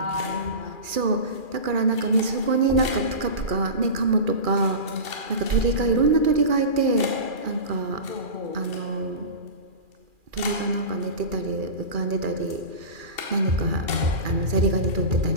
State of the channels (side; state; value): left; late; 2.4 ms